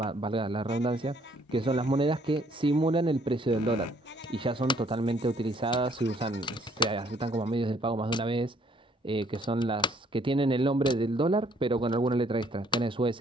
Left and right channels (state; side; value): normal; both; correlation 0.64